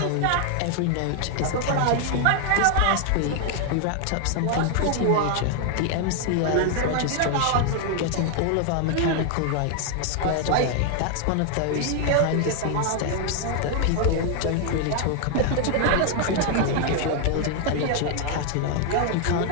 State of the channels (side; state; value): both; different; correlation 0.00